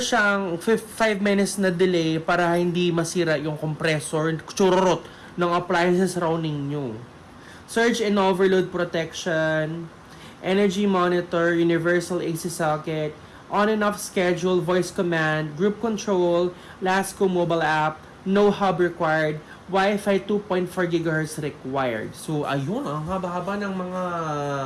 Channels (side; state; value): both; identical; correlation 1.00